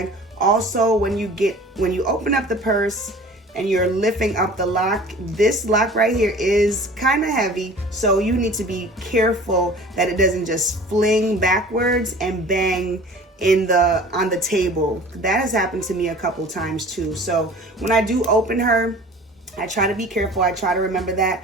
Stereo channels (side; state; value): both; normal; correlation 0.44